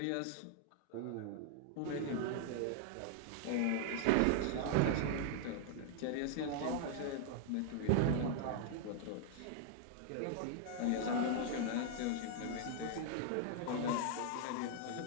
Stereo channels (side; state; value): both; different; correlation 0.00